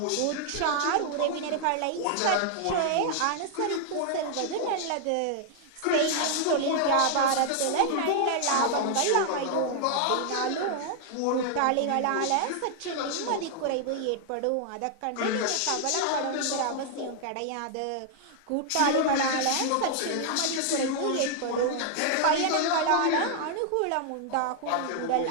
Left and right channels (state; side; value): different; both; correlation 0.00